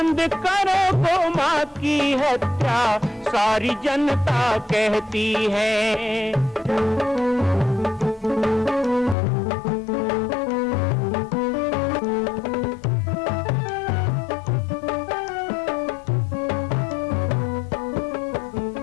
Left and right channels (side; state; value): right; drops out; at 9.2 s